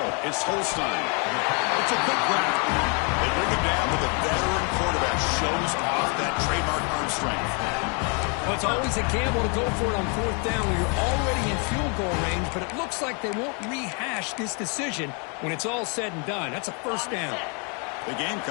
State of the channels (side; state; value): right; quieter; 36.3 dB